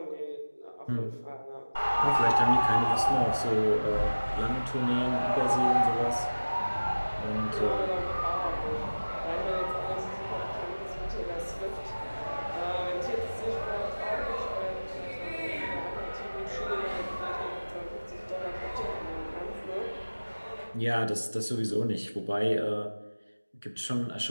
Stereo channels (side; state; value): both; inverted; correlation -1.00